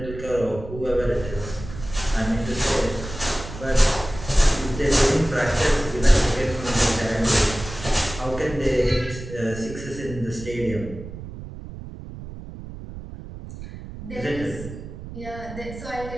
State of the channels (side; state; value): right; noise; rumble, 12 dB below the sound